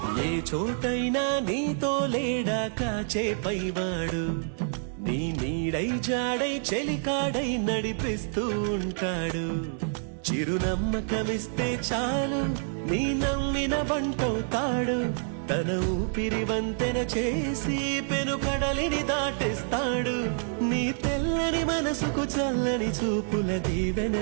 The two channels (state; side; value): silent; left; 60 dB below the other